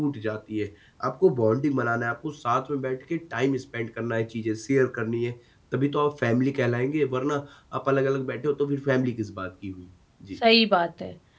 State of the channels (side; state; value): both; identical; correlation 1.00